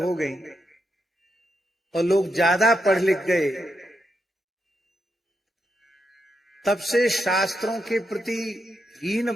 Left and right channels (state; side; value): normal; both; correlation 0.83